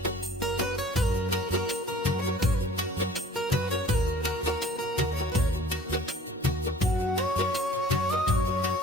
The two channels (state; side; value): normal; both; correlation 0.48